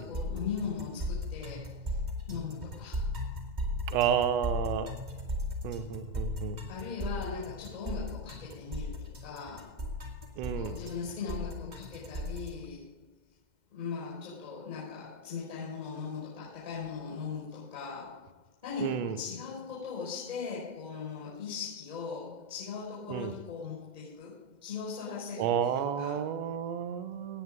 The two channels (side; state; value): left; late; 2.1 ms